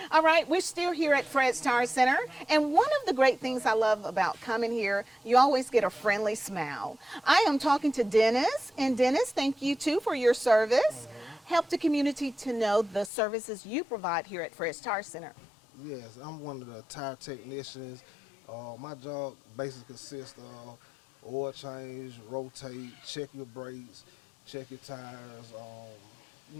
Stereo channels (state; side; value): drops out; right; at 13.1 s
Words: All right, we're still here at Fred's Tire Center, and one of the great things I love about coming here, you always get a friendly smile. I am talking to Dennis, and Dennis, thank you too for your service. Help the community to know the services you provide here at Fred's Tire Center. Yes, I'm one of the tire technicians. My job basically consists of oil change, rotate, check your brakes, check your tires,